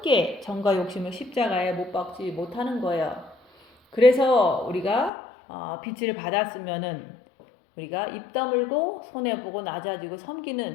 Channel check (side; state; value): right; drops out; at 5.1 s